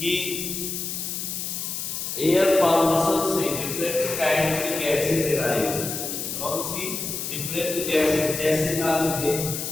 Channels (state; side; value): noise; left; hiss, 4 dB below the sound